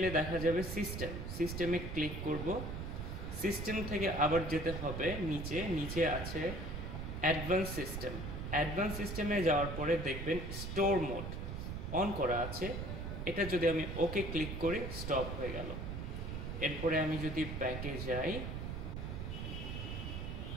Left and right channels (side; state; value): right; noise; rumble, 5 dB below the sound